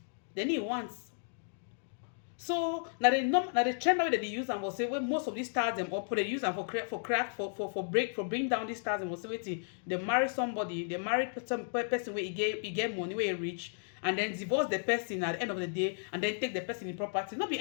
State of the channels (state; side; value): silent; right; digital silence